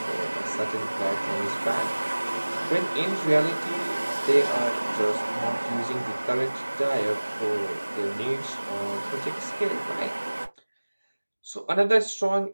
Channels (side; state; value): both; inverted; correlation -1.00